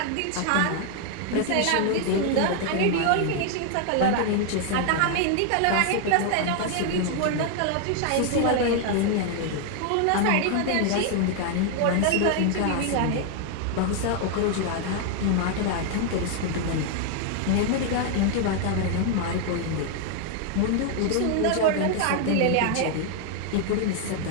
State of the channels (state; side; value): different; both; correlation 0.00